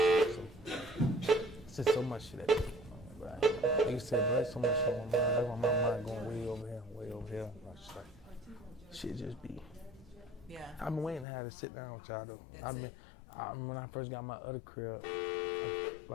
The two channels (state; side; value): drops out; right; at 11.2 s